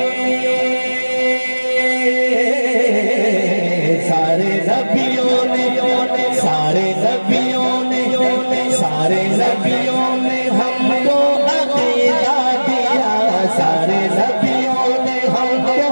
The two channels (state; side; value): inverted; both; correlation -1.00